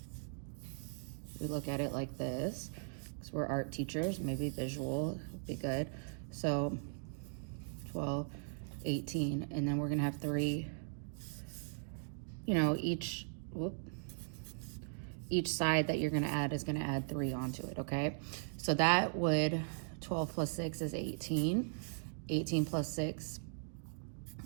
we look at it like this, because we're art teachers, maybe visual would be good. So 12, 18, and then we're gonna have 3, you know, each side that you're gonna add is gonna add 3 onto it, okay? So that would, 12 plus 6 is 18. 18 plus 6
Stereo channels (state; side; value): silent; left; digital silence